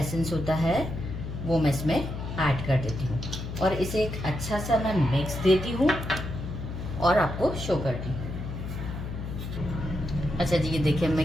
होता है वो मैं इसमें ऐड कर देती हूँ। और इसे एक अच्छा सा मैं मिक्स देती हूँ और आपको शो करती हूँ। अच्छा जी, ये देखिए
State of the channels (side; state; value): left; noise; hum, 6 dB below the sound